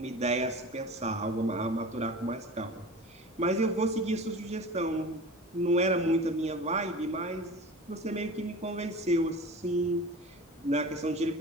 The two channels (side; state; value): both; normal; correlation 0.36